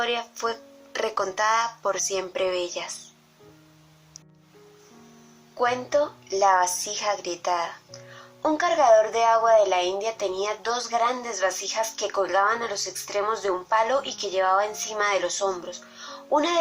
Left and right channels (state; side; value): identical; both; correlation 1.00